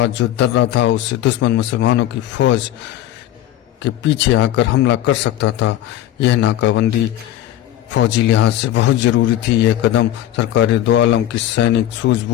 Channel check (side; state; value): right; quieter; 12.8 dB